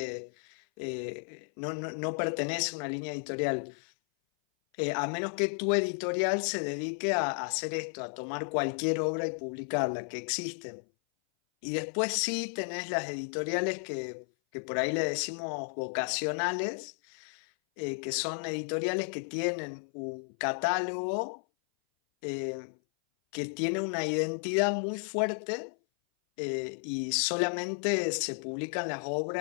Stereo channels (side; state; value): right; silent; 56 dB below the other